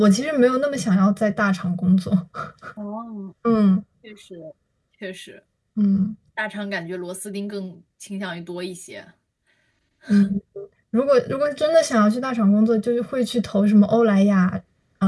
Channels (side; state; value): both; identical; correlation 1.00